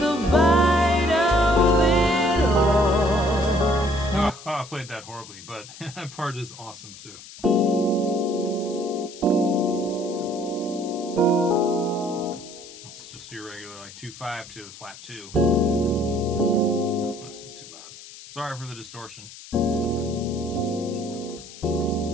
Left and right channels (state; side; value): noise; left; hiss, 17 dB below the sound